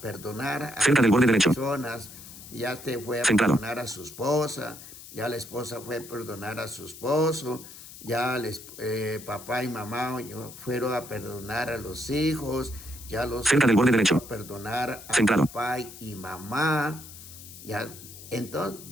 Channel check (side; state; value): left; noise; hiss, 16 dB below the sound